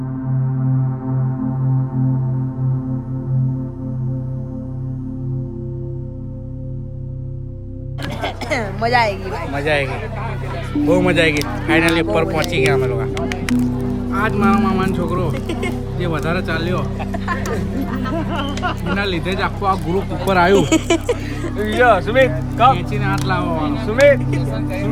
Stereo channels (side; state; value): both; identical; correlation 1.00